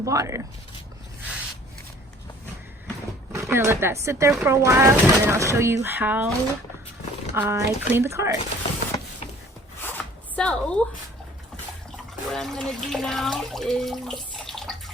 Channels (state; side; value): normal; both; correlation 0.52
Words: water. I'm gonna let that sit there for a while, and then I'll show you how I clean the car. So what I'm gonna do now is